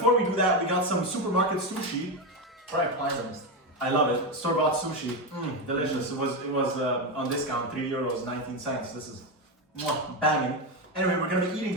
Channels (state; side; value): normal; both; correlation 0.11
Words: we do that, we got some supermarket sushi. Right, pleasant. I love it. Store-bought sushi. Delicious. It was on discount, €3, 19 cents. This is banging. Anyway, we're gonna be eating